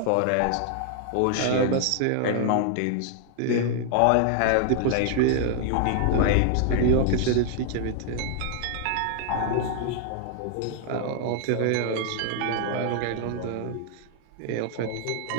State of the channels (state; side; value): different; both; correlation -0.01